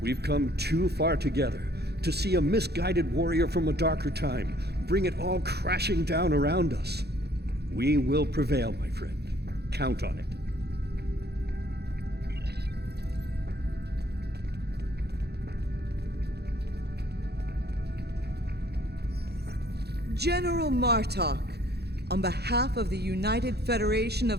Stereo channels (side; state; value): left; late; 0.48 ms